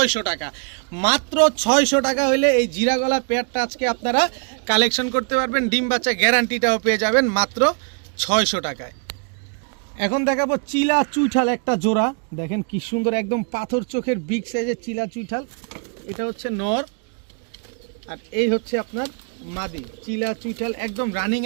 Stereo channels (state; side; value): quieter; left; 38.8 dB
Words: টাকা, মাত্র 600 টাকা হলে এই জিরা গলা পেয়ারটা আজকে আপনারা কালেকশন করতে পারবেন। ডিম বাচ্চা গ্যারান্টিটাও পেয়ে যাবেন মাত্র 600 টাকায়। এখন দেখাবো চিলা চুইঠাল একটা জোড়া, দেখেন কি সুন্দর, একদম পাথর চোখের বিগ সাইজের চিলা চুইঠাল। এটা হচ্ছে নর আর এই হচ্ছে আপনার মাদি। চিলা চুইঠাল একদম রানিং